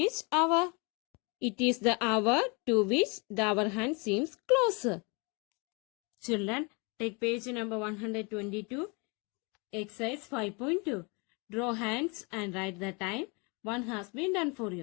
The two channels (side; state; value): right; quieter; 31.5 dB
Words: hour? It is the hour to which the hour hand seems closer. Children, take page number 122, exercise 5.2. Draw hands and write the time. One has been done for